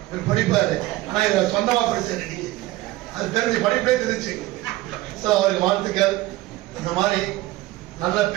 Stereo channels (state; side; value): quieter; left; 17.6 dB